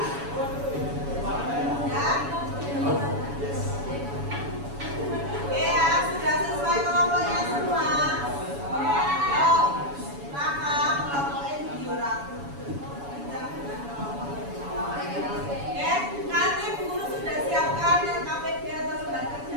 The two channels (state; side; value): late; left; 7.1 ms